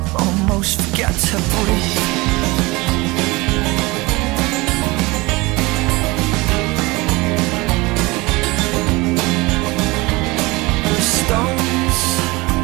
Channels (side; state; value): left; quieter; 23.0 dB